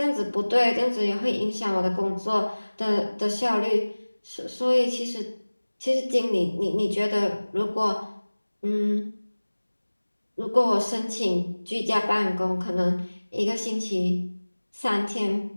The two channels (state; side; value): inverted; both; correlation -1.00